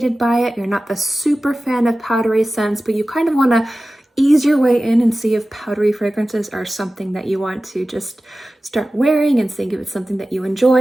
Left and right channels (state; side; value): normal; both; correlation 0.95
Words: by it, you're not the super fan of powdery scents, but you kind of want to ease your way in and see if powdery fragrances are something that you want to just start wearing and seeing if it's something that you